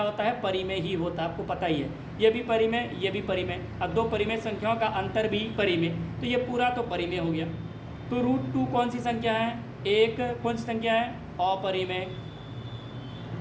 होता है? परिमेय ही होता है, आपको पता ही है। ये भी परिमेय, ये भी परिमेय, अब दो परिमेय संख्याओं का अंतर भी परिमेय, तो ये पूरा तो परिमेय हो गया। तो √2 कौन सी संख्या है? एक कौन सी संख्या है? अपरिमेय।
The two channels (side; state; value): both; identical; correlation 1.00